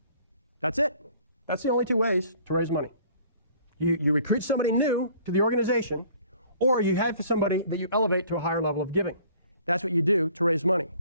That's it. That's the only 2 ways to raise money. You recruit somebody new to the organization, or you have somebody that you elevate to a higher level of giving. That's what you do to raise money,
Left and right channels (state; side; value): inverted; both; correlation -0.54